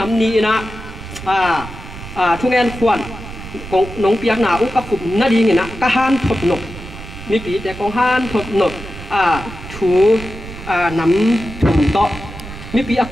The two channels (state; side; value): noise; right; rumble, 13 dB below the sound